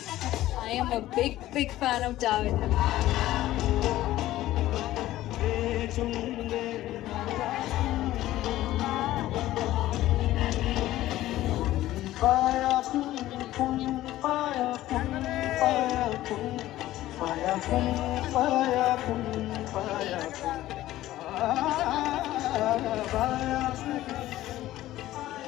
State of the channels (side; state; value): right; quieter; 15.0 dB